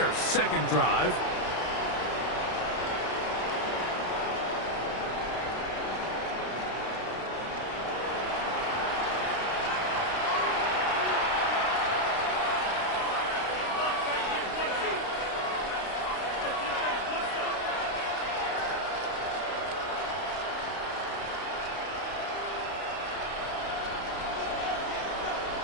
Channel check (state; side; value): late; right; 32 ms